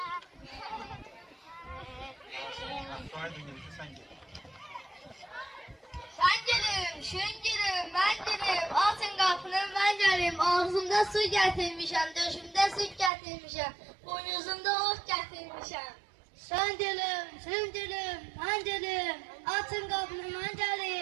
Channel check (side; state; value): left; drops out; at 13.1 s